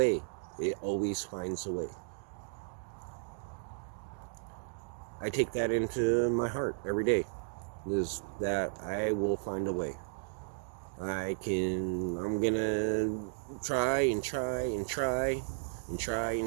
It always finds a way. I take that into my heart every day. Is that I will find a way. I'm gonna try and try and try and try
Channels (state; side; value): silent; left; digital silence